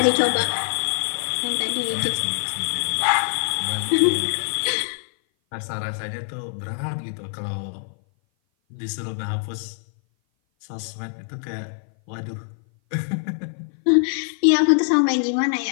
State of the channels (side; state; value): right; silent; 57 dB below the other